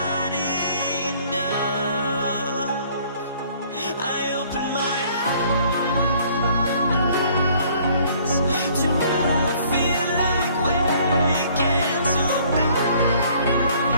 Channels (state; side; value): inverted; both; correlation -0.59